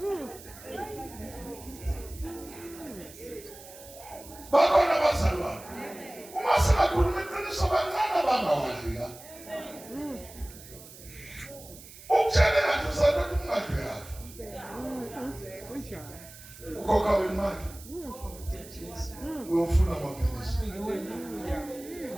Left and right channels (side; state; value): right; noise; hiss, 18 dB below the sound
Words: bakhona abazalwane uma singakhuluma iqiniso bancane abangawadli la ukutshele ngathi usathatha umngadi yafa ukhokha wemali uyofuna amaphilisi